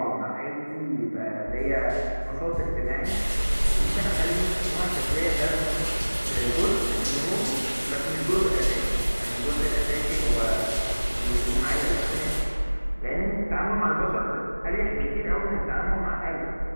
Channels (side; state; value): both; inverted; correlation -1.00